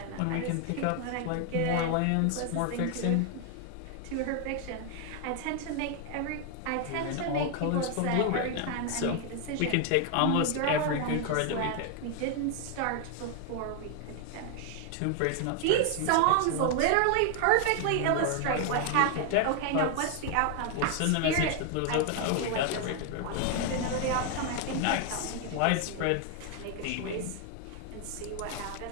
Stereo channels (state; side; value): different; both; correlation 0.01